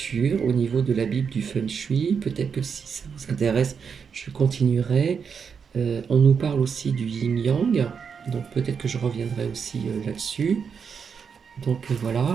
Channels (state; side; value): quieter; left; 6.4 dB